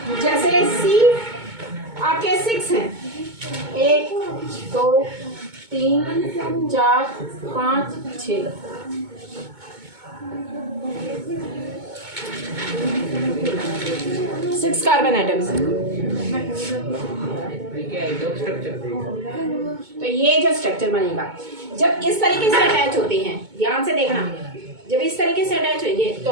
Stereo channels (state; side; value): late; left; 2.2 ms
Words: जैसे सी आपके 6 हैं, 1 2 3 4 5 6, 6 कार्बन आइटम्स। तो ये जो स्ट्रक्चर बनेगा, जब इस तरीके से अटैच होते हैं, ध्यान से देखना, जब इस तरीके से अटैच होंगे तो